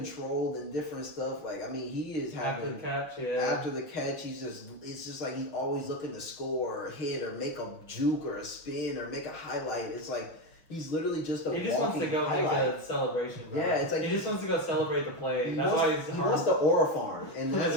and different stuff. He is having after the catch, it's just he's always looking to score or hit or make a juke or a spin or make a highlight. It's he's literally just a. He just wants to go make a celebration, bro. Yeah, it's he just wants to go celebrate the play. That's why he wants the aura farm, and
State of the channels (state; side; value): late; right; 6.3 ms